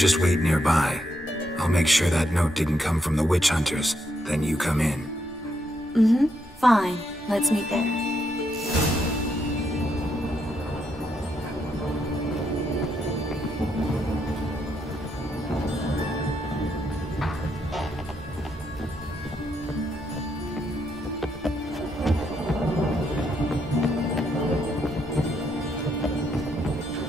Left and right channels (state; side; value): normal; both; correlation 0.78